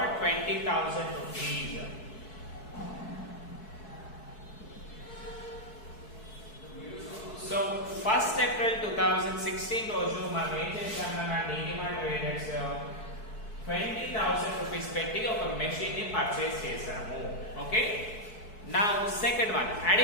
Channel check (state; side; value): late; right; 4.6 ms